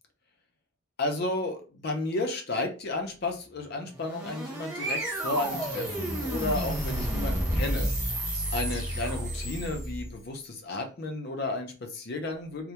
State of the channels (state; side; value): normal; both; correlation 0.33